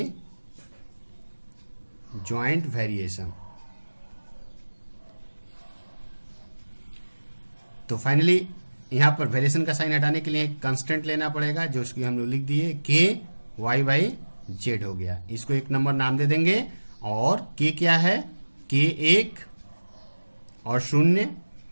joint variation. तो फाइनली यहाँ पर वेरिएशन का साइन हटाने के लिए एक कांस्टेंट लेना पड़ेगा, जो उसकी हम लोग लिख दिए k y बाई z हो गया। इसको एक नंबर नाम दे देंगे। और k क्या है, k1 और शून्य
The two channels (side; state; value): both; inverted; correlation -1.00